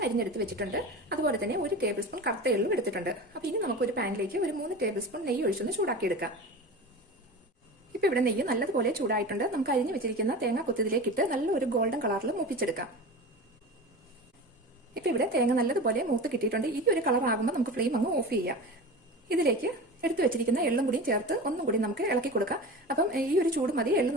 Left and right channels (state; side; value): normal; both; correlation 0.31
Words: അരിഞ്ഞെടുത്ത് വെച്ചിട്ടുണ്ട്. അതുപോലെ തന്നെ 1 ടേബിൾ സ്പൂൺ കറുത്ത എള്ളും എടുത്തിട്ടുണ്ട്. അപ്പൊ ഇനി നമുക്ക് ഒരു പാനിലേക്ക് ഒരു 3 ടേബിൾ സ്പൂൺ നെയ്യ് ഒഴിച്ചൊന്ന് ചൂടാക്കി എടുക്കാം. ഇപ്പൊ ഇവിടെ നെയ്യ് നല്ലതുപോലെ ചൂടായിട്ടുണ്ട്. നമുക്ക് അരിഞ്ഞു വെച്ചിരിക്കുന്ന തേങ്ങ കൊത്തിതിലേക്ക് ഇട്ട് നല്ല ഒരു ഗോൾഡൻ കളറിൽ മൂപ്പിച്ചെടുക്കാം. ഇപ്പൊ ഇവിടെ തേങ്ങ നല്ലതുപോലെ മൂത്ത് കിട്ടിയിട്ടുണ്ട്. ഈ ഒരു കളർ ആകുമ്പോൾ നമുക്ക് ഫ്ലെയിം അങ്ങ് ഓഫ് ചെയ്യാം. ഇതിലേക്ക് എടുത്തു വെച്ചിരിക്കുന്ന എള്ളും കൂടി ചേർത്ത് ഒന്നും കൂടി നമുക്ക് ഇളക്കി കൊടുക്കാം. അപ്പം ഈ ഒരു ചൂട് മതി എള്ള്